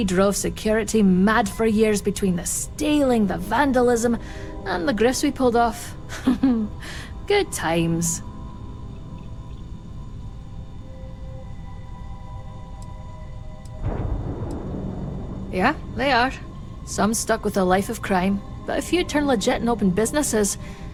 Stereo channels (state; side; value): identical; both; correlation 1.00